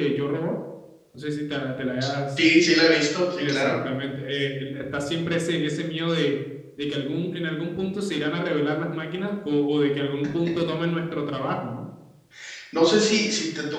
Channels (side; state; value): both; identical; correlation 1.00